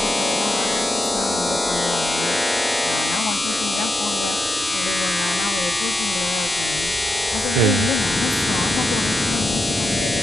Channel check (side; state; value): both; normal; correlation 0.83